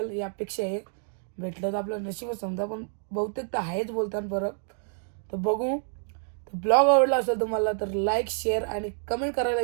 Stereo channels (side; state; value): left; silent; digital silence